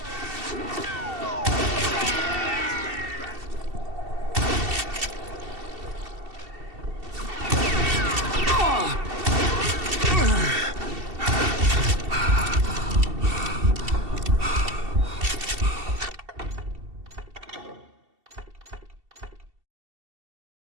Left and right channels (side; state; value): left; late; 2.7 ms